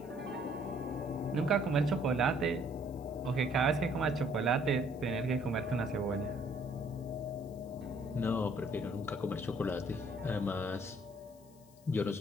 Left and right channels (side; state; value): left; noise; hiss, 28 dB below the sound